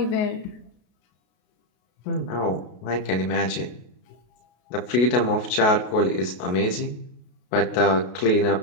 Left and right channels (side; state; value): right; late; 33 ms